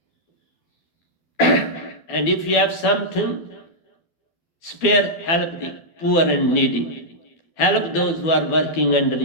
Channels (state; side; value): late; right; 12 ms